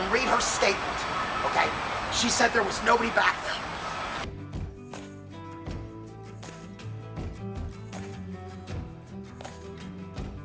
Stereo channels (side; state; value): both; identical; correlation 1.00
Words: read her statement. Okay? She said there was nobody back there.